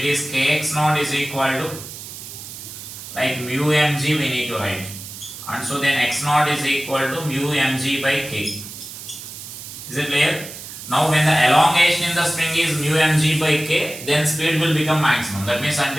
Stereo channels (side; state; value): right; noise; hiss, 12 dB below the sound